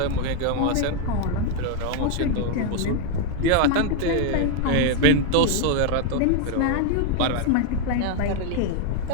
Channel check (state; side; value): different; both; correlation 0.01